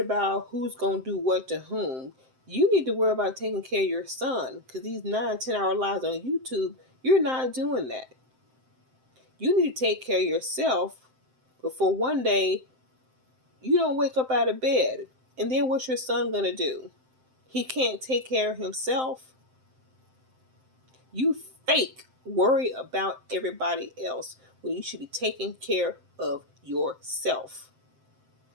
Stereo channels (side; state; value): left; late; 7.7 ms